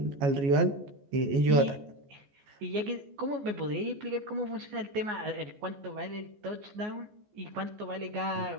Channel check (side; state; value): left; late; 14 ms